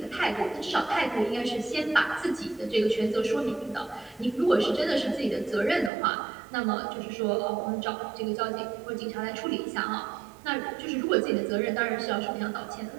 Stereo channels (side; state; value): left; drops out; at 5.9 s